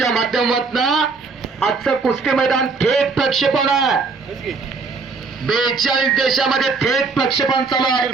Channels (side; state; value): left; quieter; 4.4 dB